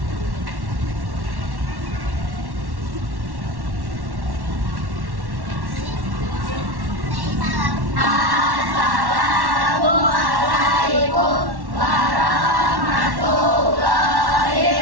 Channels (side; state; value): left; late; 1.1 ms